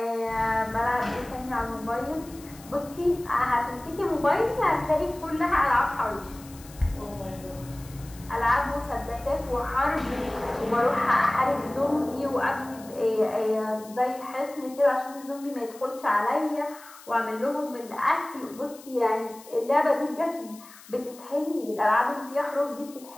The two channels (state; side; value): noise; left; hiss, 20 dB below the sound